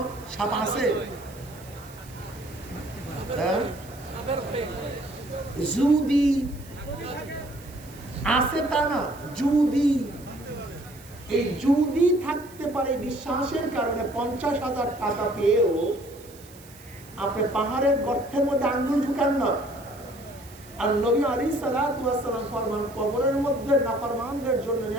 সাপ আছে? যদি আছে তা না, যদি এই যদি থাকতে পারে বিশ্বাসের কারণে 50,000 টাকা পেয়েও আপনি পাহাড়ের গর্তের মধ্যে আঙ্গুল ঢুকান না। আর নবী আলাইহিস সালাতু ওয়াস সালাম ফরমান, কবরের মধ্যে নাফরমানদের জন্য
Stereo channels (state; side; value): noise; right; hiss, 22 dB below the sound